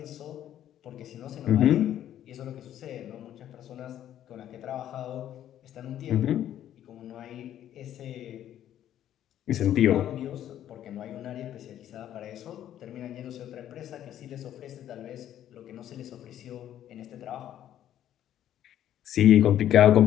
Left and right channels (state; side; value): quieter; right; 11.3 dB